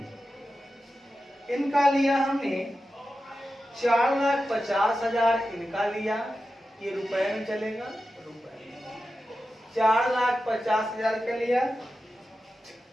इनका लिया हमने 4,50,000 इनका लिया, ये रुपए में चलेगा, रुपए में 4,50,000 का लिया।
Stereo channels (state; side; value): normal; both; correlation 0.92